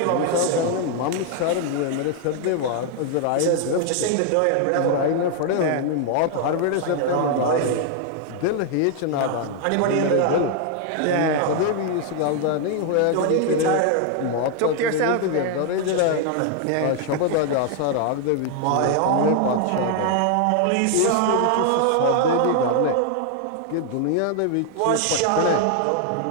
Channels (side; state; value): both; different; correlation 0.00